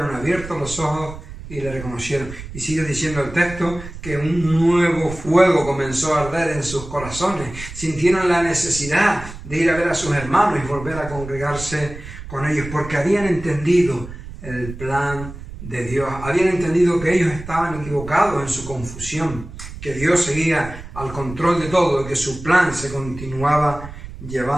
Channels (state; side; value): noise; right; rumble, 12 dB below the sound